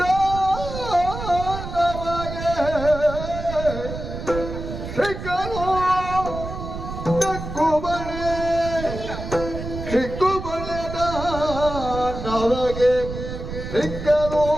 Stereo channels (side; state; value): right; noise; rumble, 8 dB below the sound